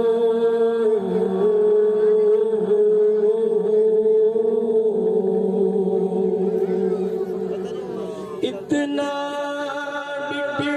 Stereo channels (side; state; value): both; identical; correlation 1.00